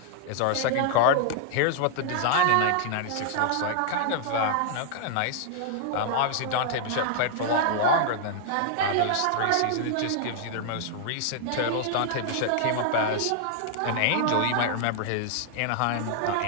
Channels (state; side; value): different; both; correlation 0.00